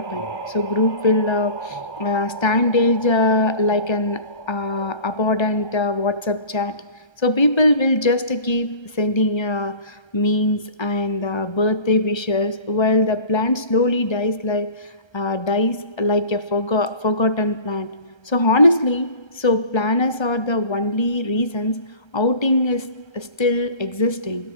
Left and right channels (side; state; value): right; late; 1.3 ms